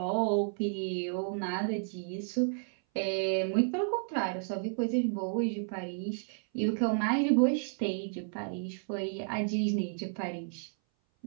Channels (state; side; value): silent; left; 56 dB below the other